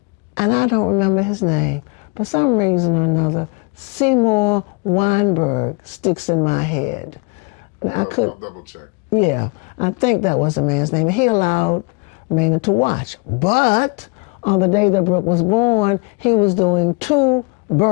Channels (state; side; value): quieter; right; 30.1 dB